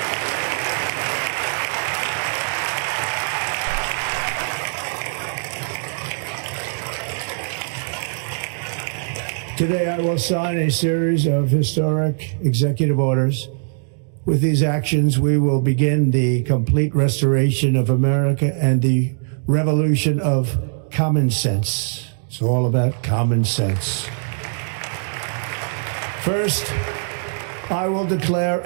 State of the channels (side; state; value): left; silent; digital silence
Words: Today, I will sign a series of historic executive orders. With these actions, we will begin the complete restoration of America and the revolution of common sense. It's all about common sense. First, I will declare